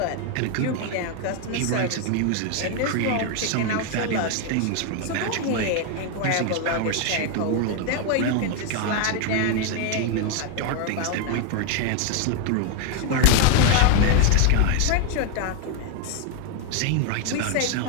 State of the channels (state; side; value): different; both; correlation 0.01